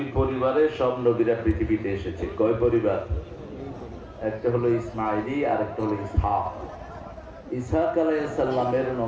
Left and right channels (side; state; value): both; identical; correlation 1.00